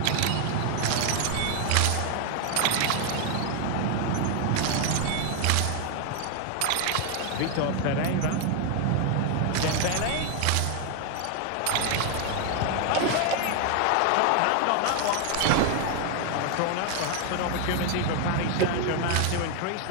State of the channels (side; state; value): both; different; correlation 0.01